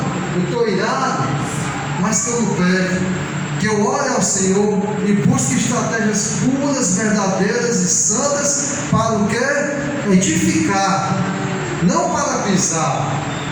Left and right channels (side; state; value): both; identical; correlation 1.00